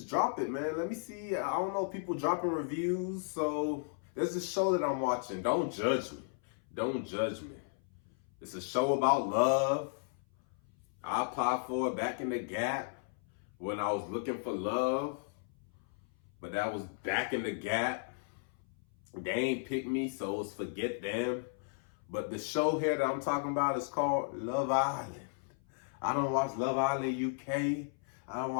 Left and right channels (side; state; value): right; silent; 55 dB below the other